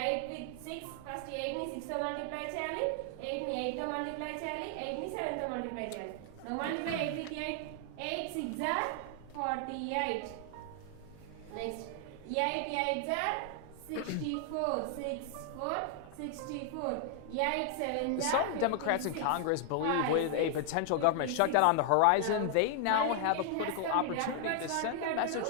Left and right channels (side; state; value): both; different; correlation 0.00